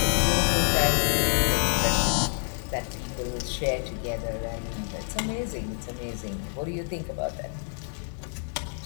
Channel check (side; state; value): right; silent; 60 dB below the other